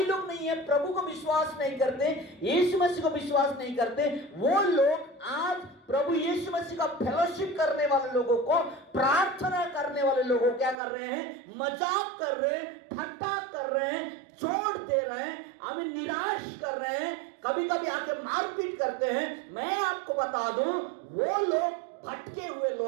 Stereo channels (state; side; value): drops out; left; at 10.8 s